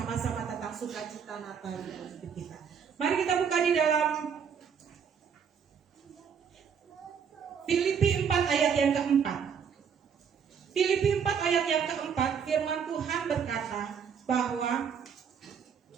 tentang sukacita Natal di dalam hidup kita. Mari kita buka di dalam Filipi 4 ayat yang keempat. Filipi 4 ayat yang keempat, firman Tuhan berkata bahwa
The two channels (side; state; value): left; quieter; 7.1 dB